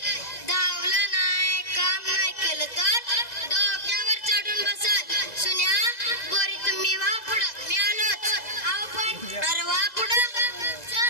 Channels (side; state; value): right; late; 2.0 ms